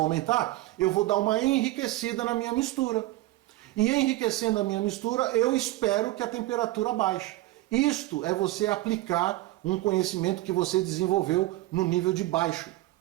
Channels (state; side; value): quieter; left; 17.3 dB